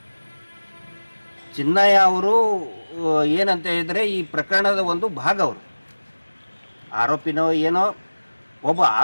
ಚಿನ್ನಯ್ಯ ಅವರು ಏನಂತ ಹೇಳಿದರೆ ಈ ಪ್ರಕರಣದ ಒಂದು ಭಾಗ, ಅವರು ಆರೋಪಿನೋ ಏನೋ, ಒಬ್ಬ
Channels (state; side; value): inverted; both; correlation -1.00